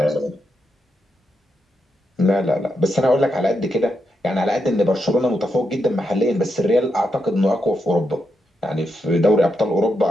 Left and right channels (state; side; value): normal; both; correlation 0.83